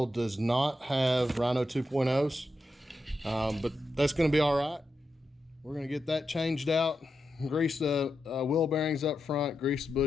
does not have Rhino 2.0s, but that's going to be all right. We're going to get that changed out, grease the wheel bearings up front, grease the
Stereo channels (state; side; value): normal; both; correlation 0.87